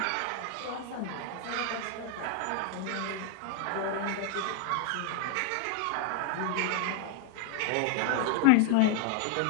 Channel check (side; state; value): both; different; correlation 0.01